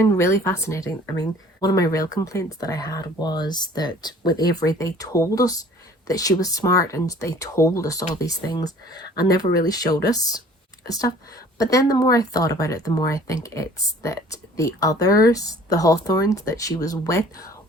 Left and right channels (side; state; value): both; normal; correlation 0.51